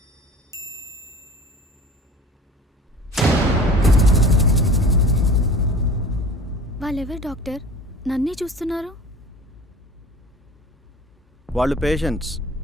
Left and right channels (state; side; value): normal; both; correlation 0.42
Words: వాళ్ళెవరు డాక్టర్? నన్నే చూస్తున్నారు. వాళ్ళు పేషెంట్స్.